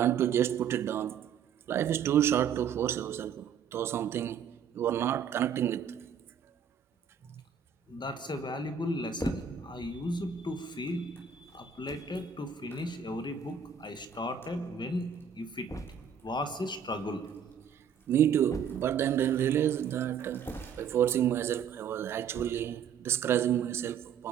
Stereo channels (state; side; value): quieter; left; 7.4 dB